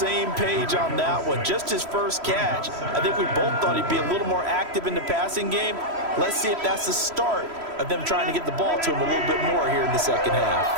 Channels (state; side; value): late; left; 3.1 ms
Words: page on that one. Just his first catch. I think we both thought he'd be a little more active in the passing game. Let's see if that's the start of them trying to get the ball to him a little bit more here in the second half.